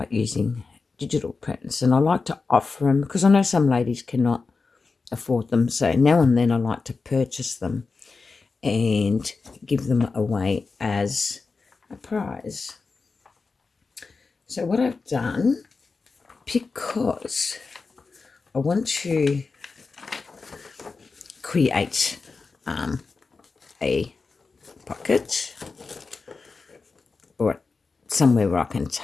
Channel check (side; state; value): right; quieter; 4.3 dB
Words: using digital prints, and I like to offer them because I know some ladies cannot afford them. So now and then I like to purchase them and give them away as a prize. So what I've done, because I want to create a pocket or somewhere where I can